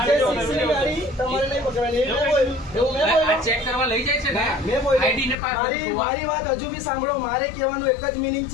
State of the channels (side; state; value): right; drops out; at 5.4 s